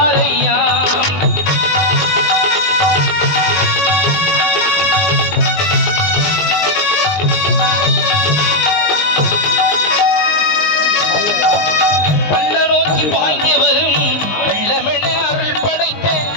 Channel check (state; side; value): late; right; 20 ms